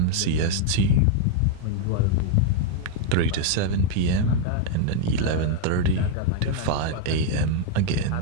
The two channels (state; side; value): different; both; correlation 0.00